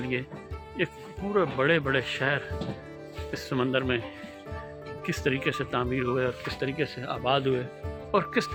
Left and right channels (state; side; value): identical; both; correlation 1.00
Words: ایک پورے بڑے بڑے شہر اس سمندر میں کس طریقے سے تعمیر ہوئے اور کس طریقے سے آباد ہوئے، اور کس